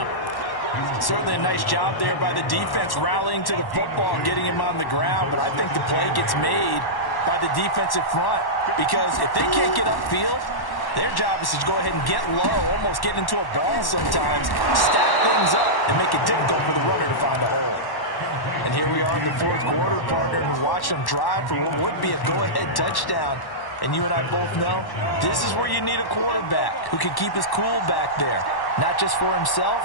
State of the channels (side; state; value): right; late; 1.1 ms